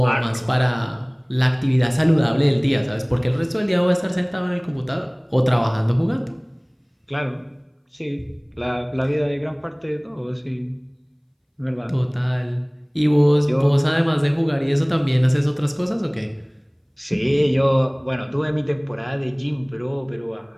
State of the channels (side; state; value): both; identical; correlation 1.00